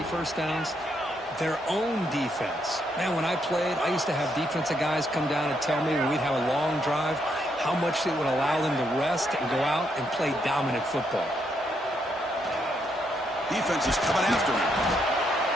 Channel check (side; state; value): both; normal; correlation 0.77